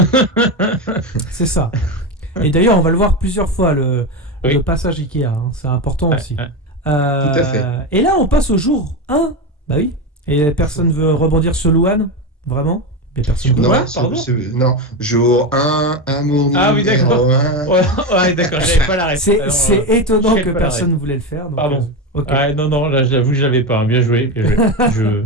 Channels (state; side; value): normal; both; correlation 0.16